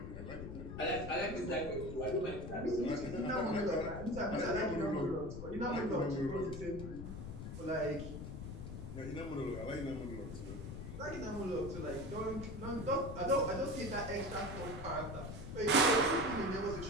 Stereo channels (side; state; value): left; noise; rumble, 8 dB below the sound